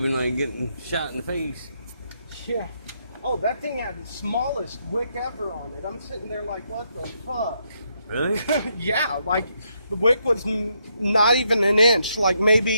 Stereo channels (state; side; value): inverted; both; correlation -0.77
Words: and like getting shot in the face. Yeah. Oh, that thing had the smallest wick ever on it. I'm sitting there like, what the fuck? Really? Yeah, like the wick was not even an inch, like